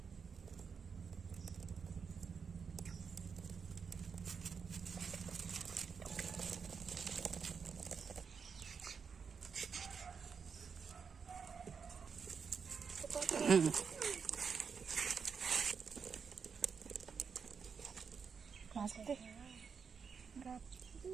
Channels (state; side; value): quieter; left; 6.0 dB